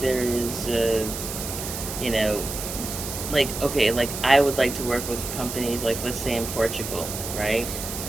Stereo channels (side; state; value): right; noise; hiss, 7 dB below the sound